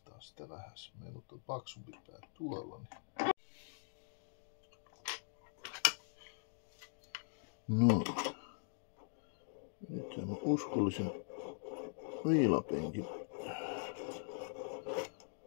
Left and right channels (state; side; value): silent; right; digital silence